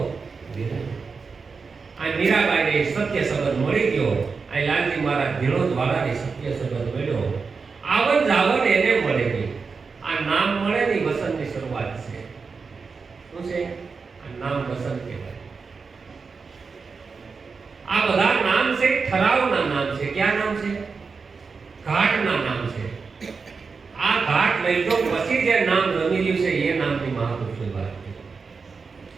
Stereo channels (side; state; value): left; quieter; 4.9 dB